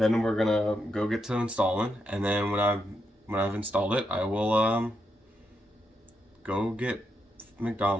we're gonna go get to installing, and then when I've installed it, I will go get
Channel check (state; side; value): normal; both; correlation 0.82